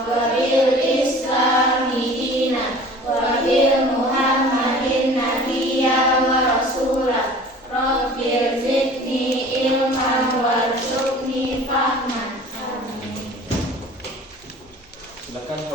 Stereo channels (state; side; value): normal; both; correlation 0.44